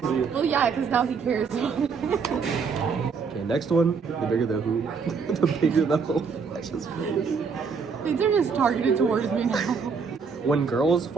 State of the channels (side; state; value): left; quieter; 5.5 dB